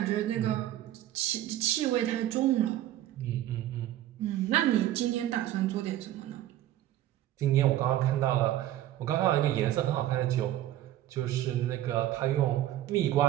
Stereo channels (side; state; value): left; quieter; 13.3 dB